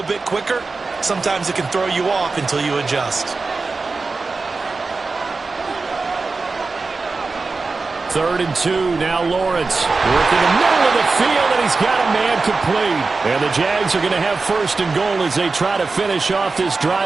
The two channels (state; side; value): quieter; left; 4.0 dB